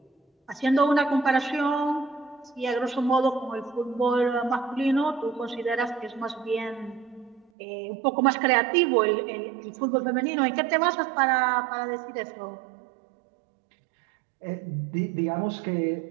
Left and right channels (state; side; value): drops out; left; at 7.5 s